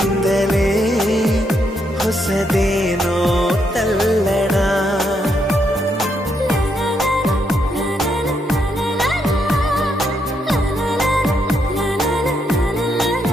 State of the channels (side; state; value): both; normal; correlation 0.78